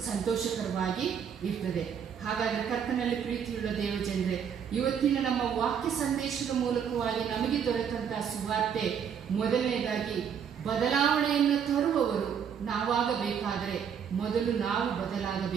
ಸಂತೋಷಕರವಾಗಿ ಇರ್ತದೆ. ಹಾಗಾದ್ರೆ ಕರ್ತನಲ್ಲಿ ಪ್ರೀತಿಯುಳ್ಳ ದೇವಜನರೇ, ಇವತ್ತಿನ ನಮ್ಮ ವಾಕ್ಯ ಸಂದೇಶದ ಮೂಲಕವಾಗಿ ನಮಗೆ ದೊರೆತಂತಹ ಸುವಾರ್ತೆ, ಮೊದಲನೇದಾಗಿ ಬದಲಾವಣೆಯನ್ನು ತರುವವರು ನಾವಾಗಬೇಕಾದರೆ ಮೊದಲು ನಾವು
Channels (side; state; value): left; quieter; 7.7 dB